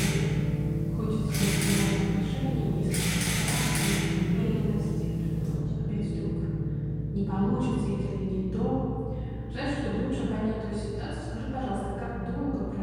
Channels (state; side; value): identical; both; correlation 1.00